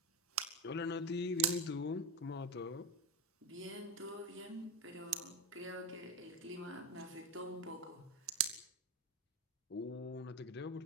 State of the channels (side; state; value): both; normal; correlation 0.19